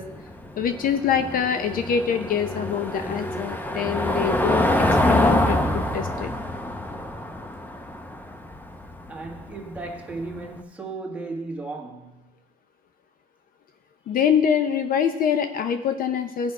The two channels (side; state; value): right; quieter; 3.8 dB